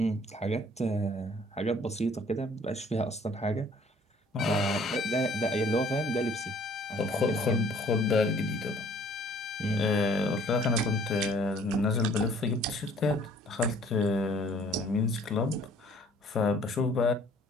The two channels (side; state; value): both; normal; correlation 0.56